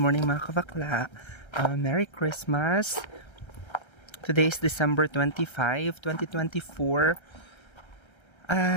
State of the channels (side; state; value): right; late; 1.3 ms